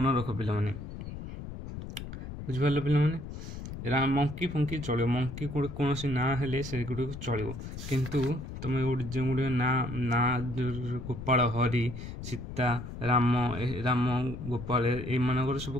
ରଖ ପିଲାମାନେ। ବୁଝିପାରିଲ ପିଲାମାନେ? ମଙ୍କି ଫଙ୍କି ଚଳିବ, ମଙ୍କି କୌଣସି ନାଁ ହେଲେ ସେଗୁଡ଼ିକ ଚଳିବ, କିନ୍ତୁ ତୁମେ ଯେଉଁଗୁଡ଼ିକ ନାଁ ଗୋପାଳ, ହରି, ସୀତା, ରାମ ଗୋପାଳ ଏଇମାନଙ୍କର ସବୁ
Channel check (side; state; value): left; noise; rumble, 9 dB below the sound